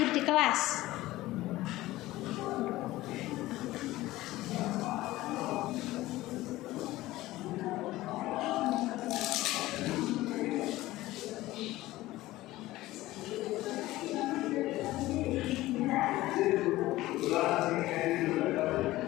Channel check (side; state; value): right; quieter; 17.2 dB